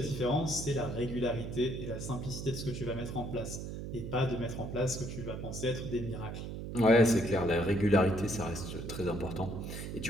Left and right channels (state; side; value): noise; right; hum, 7 dB below the sound